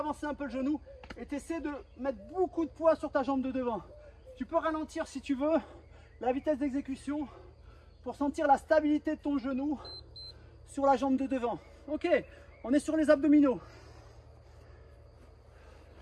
un peu le genou et tu essaies de mettre beaucoup de poids sur ta jambe de devant. Tu peux ralentir si tu veux la vitesse d'exécution pour sentir la stabilité de ton genou sur la jambe de devant. Ok, on est sur les abdominaux.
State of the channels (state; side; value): identical; both; correlation 1.00